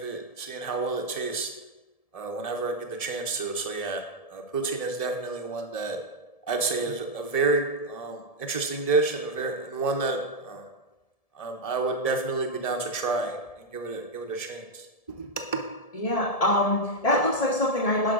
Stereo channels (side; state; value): right; late; 1.7 ms